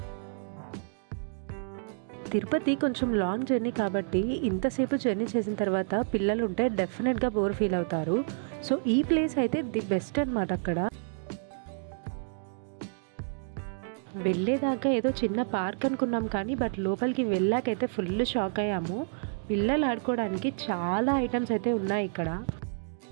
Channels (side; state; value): left; silent; digital silence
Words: తిరుపతి కొంచెం లాంగ్ జర్నీ కాబట్టి ఇంతసేపు జర్నీ చేసిన తర్వాత పిల్లలు ఉంటే డెఫినెట్గా బోర్ ఫీల్ అవుతారు. సో ఈ ప్లేస్ అయితే ది బెస్ట్ అన్నమాట. అక్కడ వెళ్ళేదాకా ఏదో చిన్న పార్క్ అనుకున్నాం, కానీ బట్ లోపలికి వెళ్ళాకైతే ఫుల్ షాక్ అయ్యాము. పిల్లలు ఆడుకోవడానికి చాలా ఐటమ్స్ అయితే ఉన్నాయి ఇక్కడ.